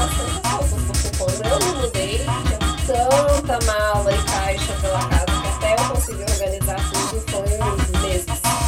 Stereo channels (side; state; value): both; identical; correlation 1.00